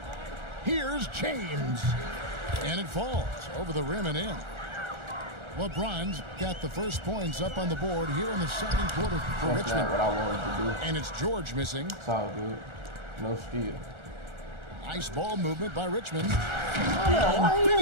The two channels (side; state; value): left; late; 1.4 ms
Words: Here's James. And it falls over the rim and in. LeBron's got the first points up on the board here in the second quarter for That's Richmond. not what I wanted to do. And it's George missing. It's all good. No steal. Nice ball movement by Richmond. Why are you